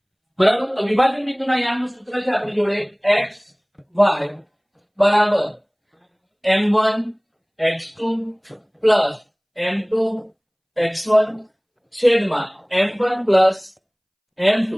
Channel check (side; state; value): both; identical; correlation 1.00